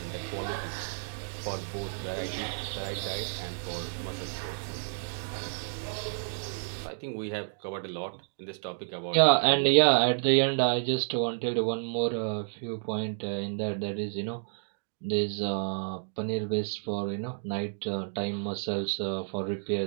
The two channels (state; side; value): silent; left; digital silence